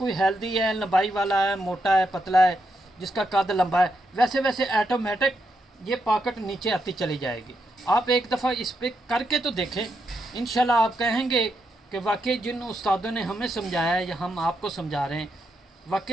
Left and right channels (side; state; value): both; normal; correlation 0.82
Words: हेल्दी है, लंबाई वाला है, मोटा है, पतला है, जिसका कद लंबा है, वैसे वैसे ऑटोमेटिक ये पॉकेट नीचे आती चली जाएगी। आप एक दफ़ा इस पर करके तो देखें, इंशाल्लाह आप कहेंगे कि वाकई जिन उस्तादों ने हमें समझाया है या हम आपको समझा रहे हैं,